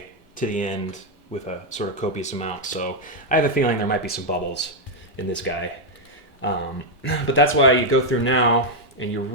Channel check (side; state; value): both; normal; correlation 0.00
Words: to the end with a sort of copious amount, so I have a feeling there might be some bubbles in this guy. But that's why you go through now and you